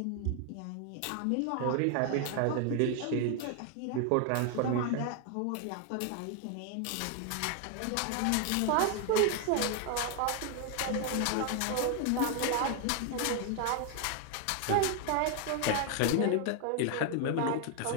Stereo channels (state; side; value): different; both; correlation 0.00